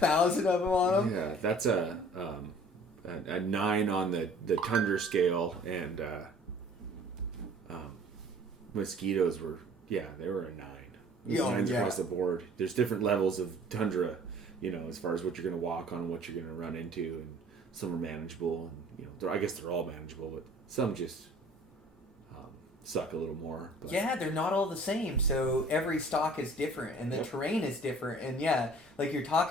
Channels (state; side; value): normal; both; correlation 0.51